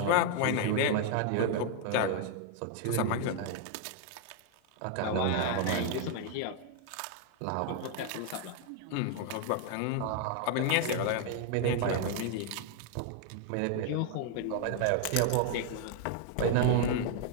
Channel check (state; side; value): different; both; correlation 0.00